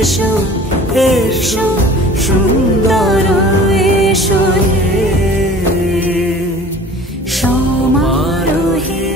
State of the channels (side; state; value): both; normal; correlation 0.45